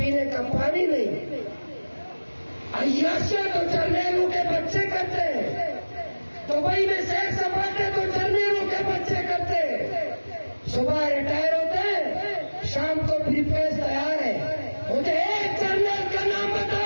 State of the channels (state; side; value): inverted; both; correlation -1.00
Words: کا پانی نہیں. عیاشیاں تو جرنیلوں کے بچے کرتے ہیں، دبئی میں سیر سپاٹے تو جرنیلوں کے بچے کرتے ہیں. صبح ریٹائر ہوتے ہیں، شام کو بھی پیس تیار ہے. مجھے ایک جرنیل کا نام